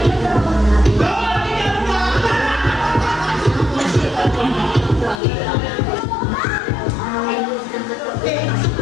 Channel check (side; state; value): right; drops out; at 5.2 s